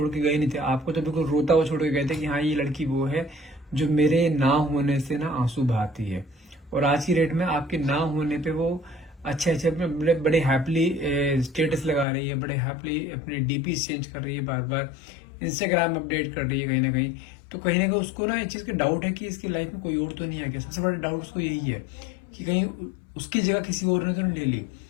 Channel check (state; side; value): drops out; right; at 12.1 s